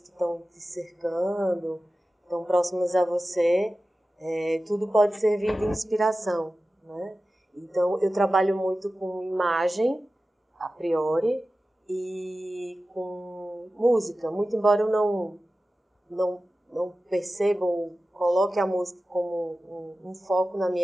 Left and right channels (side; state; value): both; normal; correlation 0.95